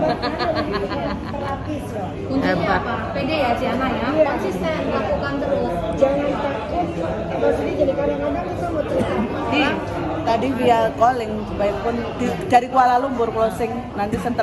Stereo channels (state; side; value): identical; both; correlation 1.00